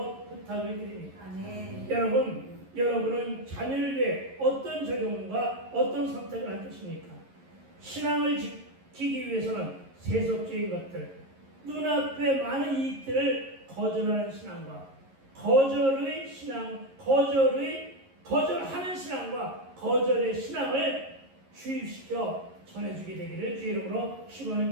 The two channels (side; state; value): left; late; 11 ms